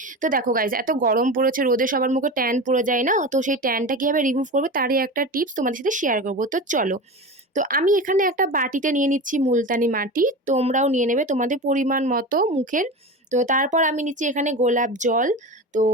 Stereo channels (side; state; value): both; normal; correlation 0.27